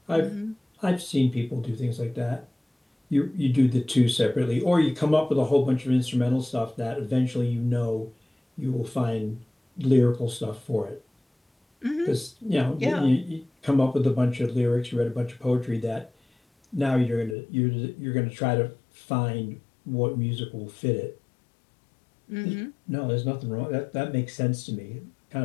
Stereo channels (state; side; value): drops out; right; at 17.4 s